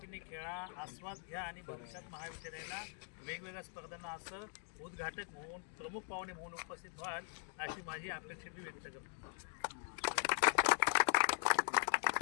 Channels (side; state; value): right; silent; 50 dB below the other